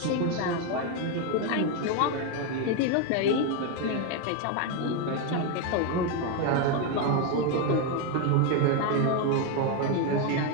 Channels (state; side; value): different; both; correlation 0.02